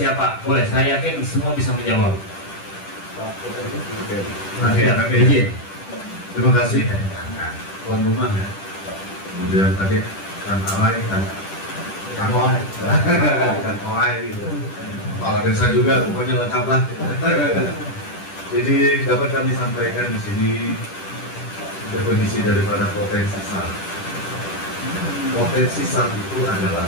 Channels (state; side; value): late; right; 10 ms